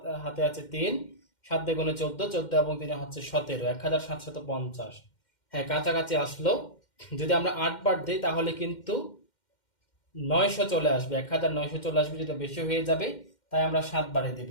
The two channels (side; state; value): right; late; 2.1 ms